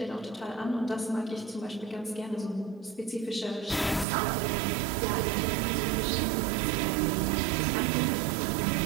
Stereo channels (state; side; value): drops out; left; at 4.0 s